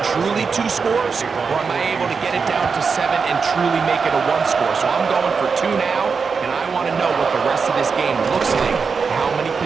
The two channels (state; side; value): quieter; left; 5.3 dB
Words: truly 2 scores, or am I able to get it down to 7 and truly make it a 1 score? So I'm going for 2 now, and I want to know what the rest of this game looks like. How many